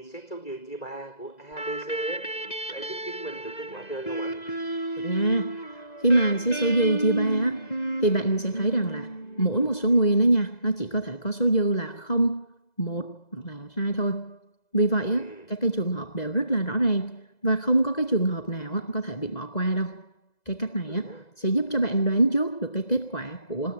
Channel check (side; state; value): right; late; 2.0 ms